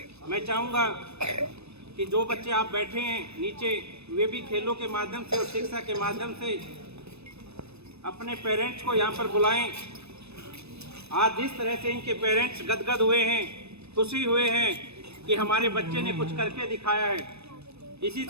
मैं चाहूँगा कि जो बच्चे आप बैठे हैं नीचे, वे भी खेलों के माध्यम से और शिक्षा के माध्यम से अपने पेरेंट्स को यहाँ पर बुलाएं। आज जिस तरह से इनके पेरेंट्स गदगद हुए हैं, खुशी हुए हैं कि हमारे बच्चे ने कुछ करके दिखाया है, इसी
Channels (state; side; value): late; left; 0.79 ms